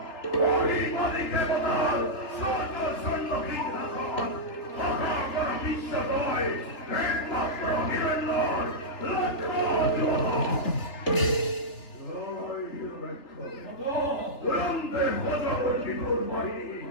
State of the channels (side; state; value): right; late; 3.5 ms